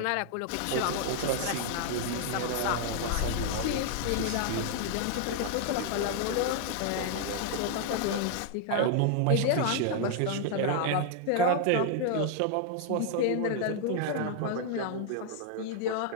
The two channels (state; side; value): different; both; correlation 0.00